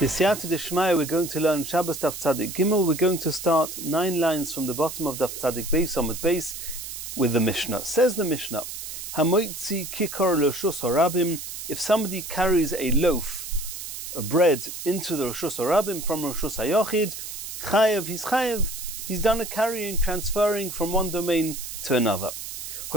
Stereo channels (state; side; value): noise; right; hiss, 8 dB below the sound